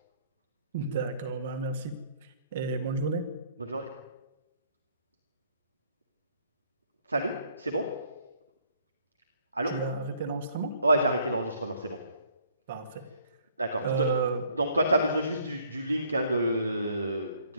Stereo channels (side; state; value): both; inverted; correlation -0.63